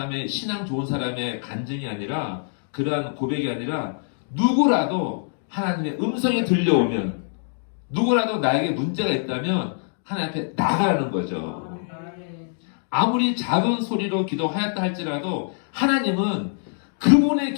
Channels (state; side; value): silent; right; digital silence